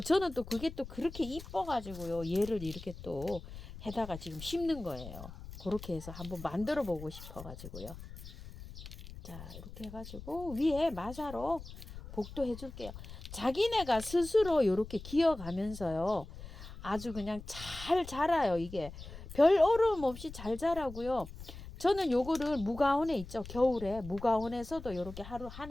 저는 또 그게 또 그렇게 이뻐가지고요. 얘를 이렇게 또 해다가 지금 심는 거예요. 그렇게 해서 한번 만들어 보고 싶어가지고요. 자, 이렇게 해가지고 위에 마사로 복도 해줄게요. 자기네가 스스로 이렇게 기어가면서요. 아주 그냥 잘 자라요. 이게 별 어려움 없이 잘 자라고요. 저는 요거를 무가온에 있죠. 겨울에 무가온에서도 이렇게 하루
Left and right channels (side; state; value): left; noise; rumble, 13 dB below the sound